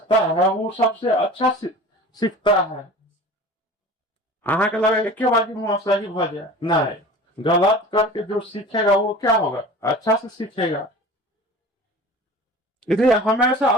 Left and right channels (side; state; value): both; normal; correlation 0.39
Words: है वो सबसे अच्छा सीखता है। अहाँ के लगे एक बार मुँह सही भ जाए, नहीं, गलत करके जो सीखेगा वो क्या होगा? अच्छा से सीखेगा। इसलिए हमेशा